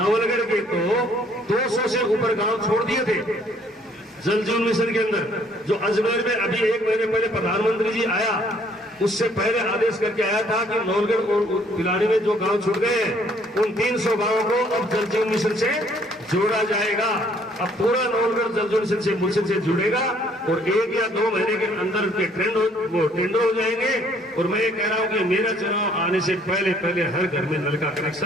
के तो 200 से ऊपर गांव छोड़ दिए थे जल जीवन मिशन के अंदर। जो अजमेर में अभी 1 महीने पहले प्रधानमंत्री जी आया, उससे पहले आदेश करके आया था कि नवलगढ़ और पिलानी में जो गांव छूट गए हैं उन 300 गांवों को अब जल जीवन मिशन से जोड़ा जाएगा। अब पूरा नवलगढ़ जल जीवन मिशन से जुड़ेगा और 1 या 2 महीने के अंदर के टेंडर हो जाएंगे। और मैं ये कह रहा हूं कि मेरा चुनाव आने से पहले पहले हर घर में नल का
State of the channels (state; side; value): normal; both; correlation 0.62